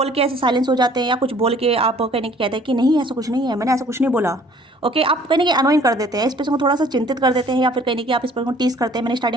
के ऐसे साइलेंस हो जाते हैं, या कुछ बोल के आप कहने की कहते हैं कि नहीं ऐसा कुछ नहीं है, मैंने ऐसा कुछ नहीं बोला। ओके, आप कहने की अनोइंग कर देते हैं, इस पर्सन को थोड़ा सा चिंतित कर देते हैं, या फिर कहने की आप इस पर्सन को टीज करते हैं। मैंने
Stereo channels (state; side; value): normal; both; correlation 0.55